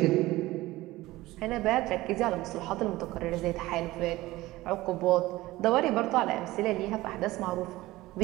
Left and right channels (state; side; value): quieter; left; 18.1 dB